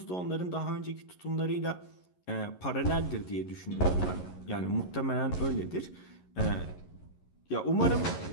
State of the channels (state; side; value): late; right; 11 ms